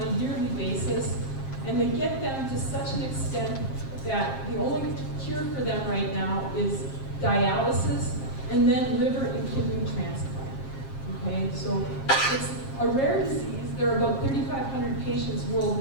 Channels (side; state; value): right; late; 7.5 ms